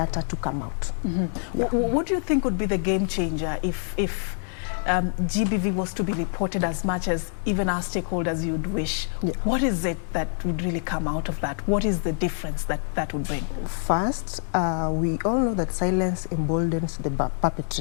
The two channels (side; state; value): right; silent; 61 dB below the other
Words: to come out. What do you think would be the game changer if GBV was to be reported as much as even our stakeholders you'd wish? What is it that would really come out of that? What is the difference that would bring? First, we all know that silence emboldens the